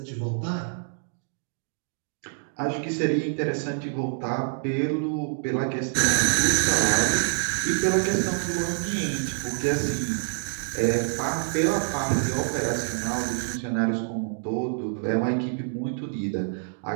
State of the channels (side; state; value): left; silent; digital silence